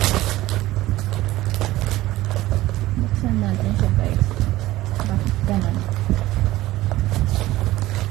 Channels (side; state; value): left; quieter; 16.7 dB